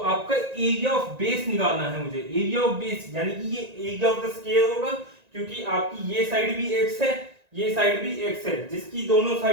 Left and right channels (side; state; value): left; late; 1.9 ms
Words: एरिया ऑफ बेस निकालना है मुझे, एरिया ऑफ बेस यानी कि ये एरिया ऑफ द स्क्वायर होगा, क्योंकि आपकी ये साइड भी x है, ये साइड भी x है, जिसकी दोनों